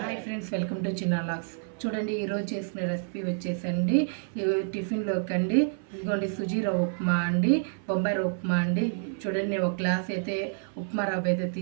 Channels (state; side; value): silent; left; 55 dB below the other